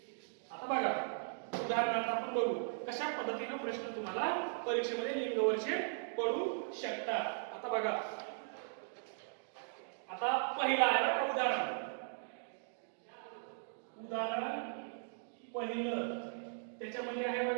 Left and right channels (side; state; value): left; silent; digital silence